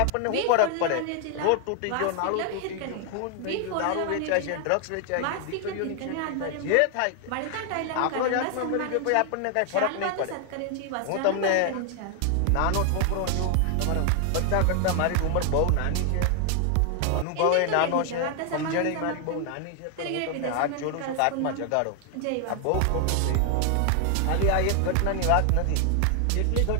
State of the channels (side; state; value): both; different; correlation 0.00